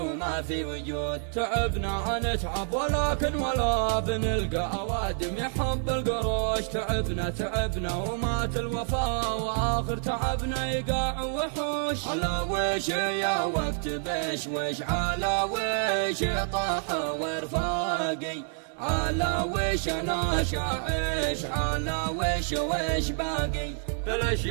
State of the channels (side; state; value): left; silent; 59 dB below the other